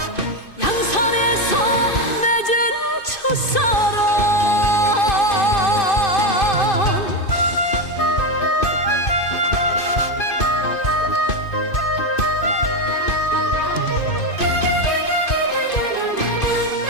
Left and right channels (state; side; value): late; right; 2.5 ms